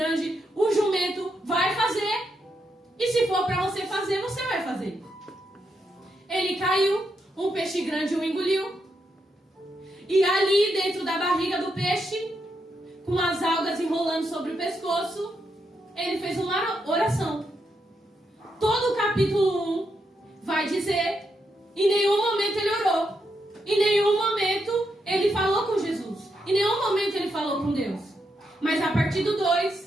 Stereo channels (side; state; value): both; normal; correlation 0.82